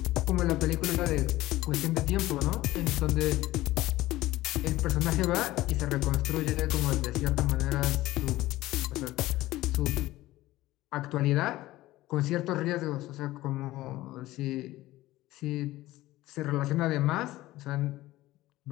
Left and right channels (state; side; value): quieter; right; 17.0 dB